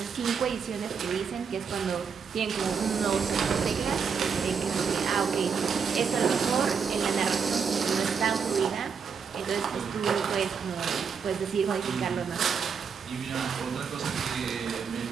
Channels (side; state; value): left; quieter; 6.2 dB